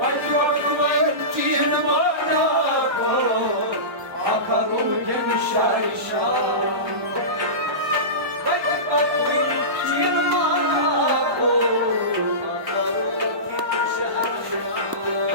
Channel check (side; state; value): left; late; 1.1 ms